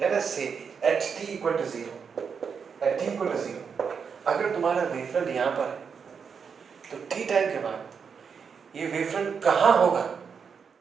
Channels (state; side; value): quieter; left; 6.3 dB